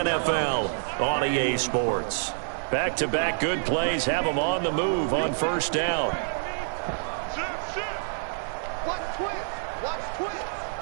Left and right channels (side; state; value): left; silent; digital silence